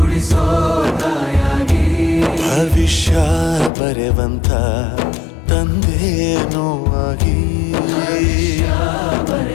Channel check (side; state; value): right; drops out; at 3.7 s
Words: ತಾಯಾಗಿ ಭವಿಷ್ಯ ಬರೆವಂತ ತಂದೇನೋ ಆಗಿ